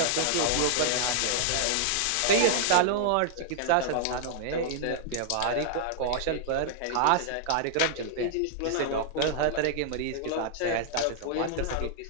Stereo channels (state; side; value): different; both; correlation -0.01